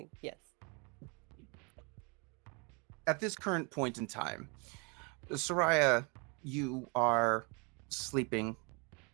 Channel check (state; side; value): quieter; left; 32.4 dB